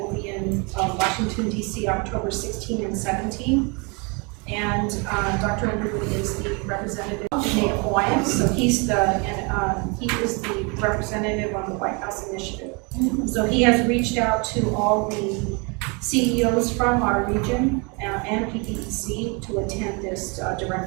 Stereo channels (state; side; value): quieter; left; 31.6 dB